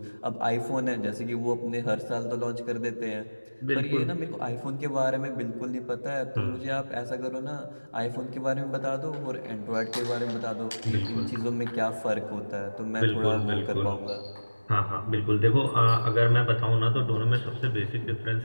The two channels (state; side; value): inverted; both; correlation -1.00